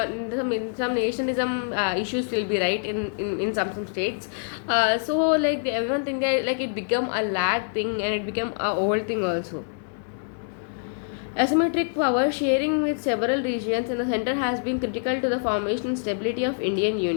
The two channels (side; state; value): right; silent; 61 dB below the other